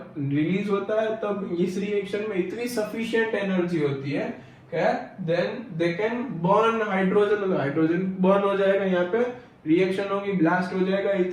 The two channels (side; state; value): both; identical; correlation 1.00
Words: रिलीज होता है तब इस रिएक्शन में इतनी सफिशिएंट एनर्जी होती है then they can burn hydrogen, hydrogen burn हो जाएगा, यहाँ पे रिएक्शन होगी, ब्लास्ट हो जाएगा।